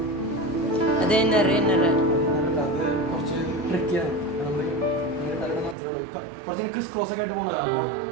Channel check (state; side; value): drops out; left; at 5.8 s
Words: അത് ഇന്നറ് ഇന്നറ് കുറച്ച് ട്രിക്കിയാണ്. കുറച്ച് ക്രിസ് ക്രോസ് ഒക്കെ ആയിട്ട് പോകുന്നതാണ്.